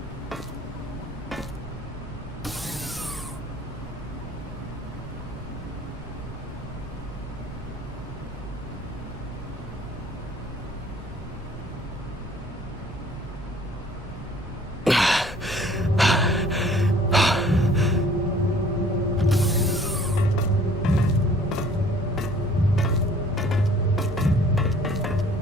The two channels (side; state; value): both; normal; correlation 0.54